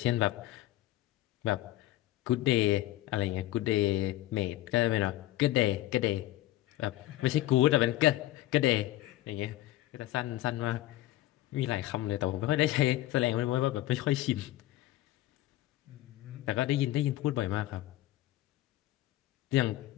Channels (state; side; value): quieter; right; 15.5 dB